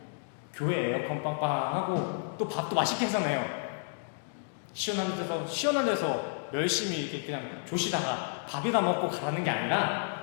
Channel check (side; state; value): right; silent; digital silence